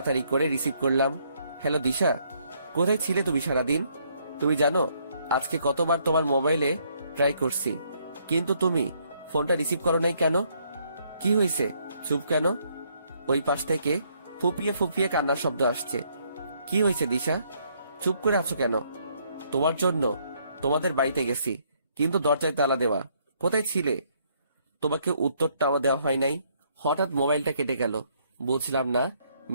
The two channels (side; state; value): both; inverted; correlation -0.69